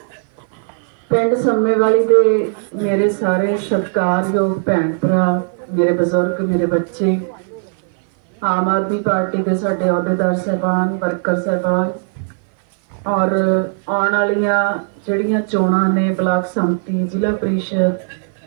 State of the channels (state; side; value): silent; left; 57 dB below the other